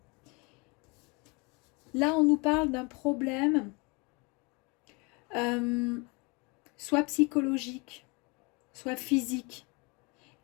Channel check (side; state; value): right; quieter; 29.3 dB